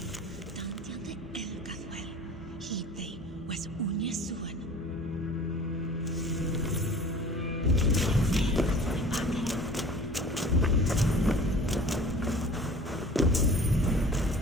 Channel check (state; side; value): normal; both; correlation 0.44